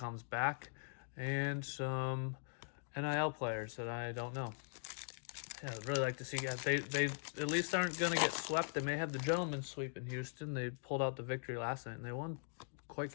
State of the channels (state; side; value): silent; right; digital silence